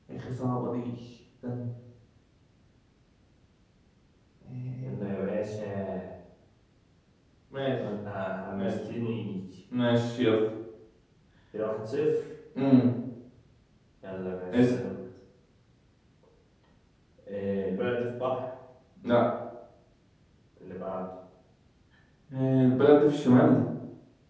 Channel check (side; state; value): both; identical; correlation 1.00